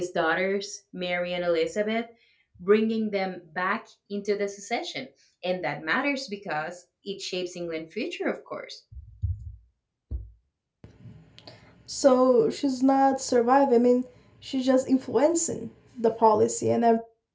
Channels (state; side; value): identical; both; correlation 1.00